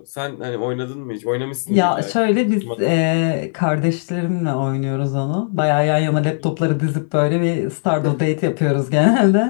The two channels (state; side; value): silent; right; 63 dB below the other